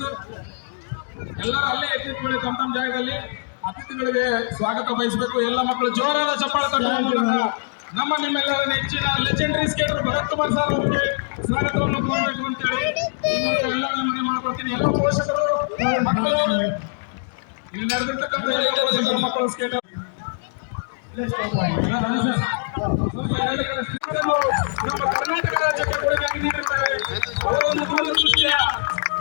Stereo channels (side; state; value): right; silent; 64 dB below the other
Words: ಎಲ್ಲರೂ ಅಲ್ಲೇ ಎತ್ತಿಟ್ಕೊಳ್ಳಿ ತಮ್ಮ ತಮ್ಮ ಜಾಗದಲ್ಲಿ. ಅತಿಥಿಗಳಿಗೆ ಸ್ವಾಗತ ಬಯಸಬೇಕು. ಎಲ್ಲ ಮಕ್ಕಳು ಜೋರಾದ ಚಪ್ಪಾಳೆ ತಟ್ಟುವ ಮೂಲಕ ನಮ್ಮ ನಿಮ್ಮೆಲ್ಲರ ನೆಚ್ಚಿನ legendary skater Bharath Kumar sir ಅವರಿಗೆ ಸ್ವಾಗತವನ್ನು ಕೋರಬೇಕು ಅಂತೇಳಿ ಎಲ್ಲ ಮನೆ ಮಾಡ್ಕೊಳ್ತೀನಿ. ಎಲ್ಲ ಪೋಷಕರು ಮಕ್ಕಳು ಇಲ್ಲಿ ನಡೆದಿರ್ತಕ್ಕಂಥ ಎಲ್ಲ ಪೋಷಕರು ಮಕ್ಕಳು ಸ್ಕೇಟರ್ ನಮ್ಮ ಕರ್ನಾಟಕ ರಾಜ್ಯಕ್ಕೆ ಕೊಡುಗೆ ನೀಡಿರುತ್ತಾರೆ. ಅವರೊಂದು ದೂರದೃಷ್ಟಿಯ